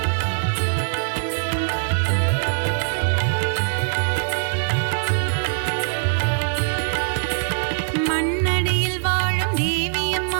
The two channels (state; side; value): silent; left; digital silence